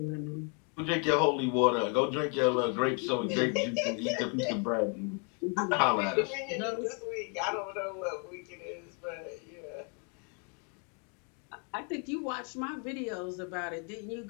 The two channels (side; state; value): right; quieter; 37.0 dB